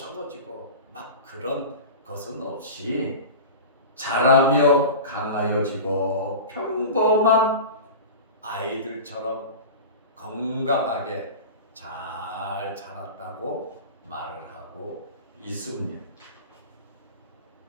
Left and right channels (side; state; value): both; inverted; correlation -0.31